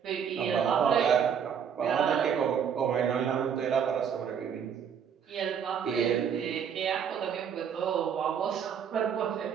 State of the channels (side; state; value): left; quieter; 7.7 dB